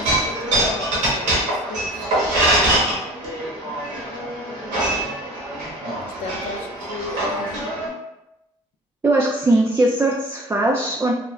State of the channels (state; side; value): normal; both; correlation 0.42